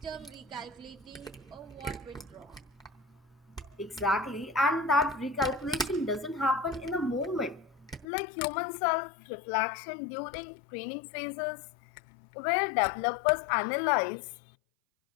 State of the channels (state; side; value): drops out; right; at 8.1 s